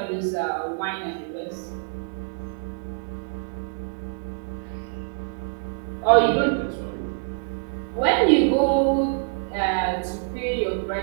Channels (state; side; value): silent; left; digital silence